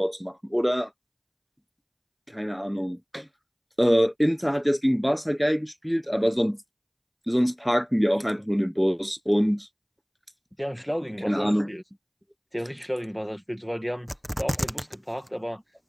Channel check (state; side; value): identical; both; correlation 1.00